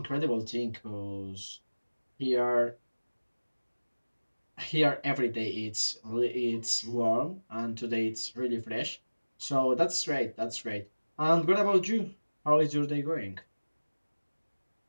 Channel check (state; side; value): inverted; both; correlation -1.00